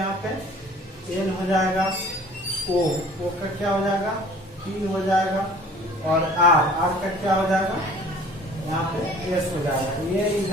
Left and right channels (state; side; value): normal; both; correlation 0.50